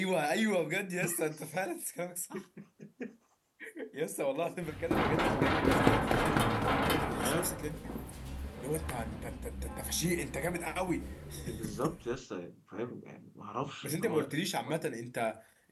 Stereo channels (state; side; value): identical; both; correlation 1.00